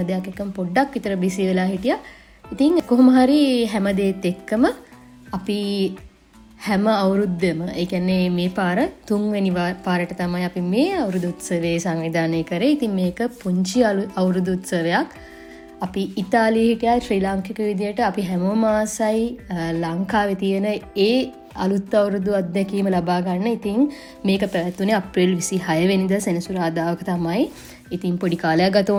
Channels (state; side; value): identical; both; correlation 1.00